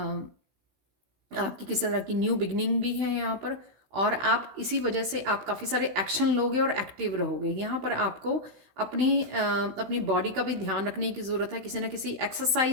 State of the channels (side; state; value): left; late; 16 ms